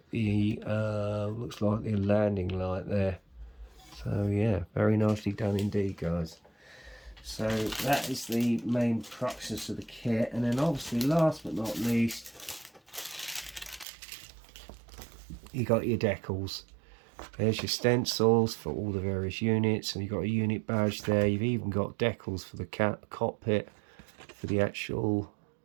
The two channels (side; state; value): left; drops out; at 13.9 s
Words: the looks like the landing light there. So yeah, very nicely done indeed, guys. So that is the main cruxus of the kit. And then obviously last but not least, you got your decals. There's your stencils for all the various units, and you've got a unit badge there. You've even got decals for the cockpit, for the actual